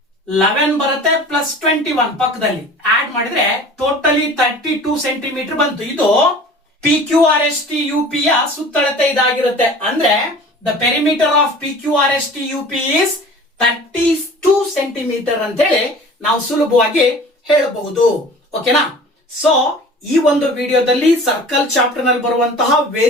11 ಬರುತ್ತೆ ಪ್ಲಸ್ 21 ಪಕ್ಕದಲ್ಲಿ ಆಡ್ ಮಾಡಿದ್ರೆ ಟೋಟಲಿ 32 ಸೆಂಟಿಮೀಟರ್ ಬಂತು. ಇದು PQRSTUP ಯ ಸುತ್ತಳತೆ ಇದಾಗಿರುತ್ತೆ. ಅಂದ್ರೆ the perimeter of PQRSTUP is 32 centimetre ಅಂತ ಹೇಳಿ ನಾವು ಸುಲಭವಾಗಿ ಹೇಳಬಹುದು. ಓಕೆನಾ? ಸೊ ಈ ಒಂದು ವಿಡಿಯೋದಲ್ಲಿ ಸರ್ಕಲ್ ಚಾಪ್ಟರ್ ನಲ್ಲಿ ಬರುವಂತಹ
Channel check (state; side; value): normal; both; correlation 0.43